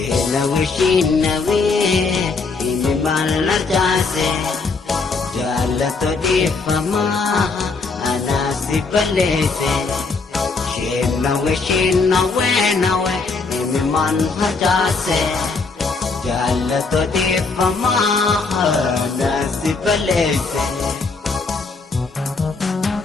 ini malar jase jalato di fama anasi balete shinawe imi man hajase jalato di fama anasi balete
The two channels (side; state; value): right; quieter; 4.2 dB